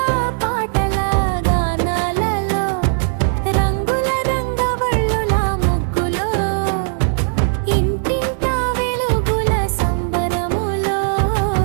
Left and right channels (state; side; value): silent; left; digital silence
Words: పాటల గానాలలో రంగుల రంగవళ్ళుల ముగ్గులో ఇంటింట వెలుగుల సంబరములో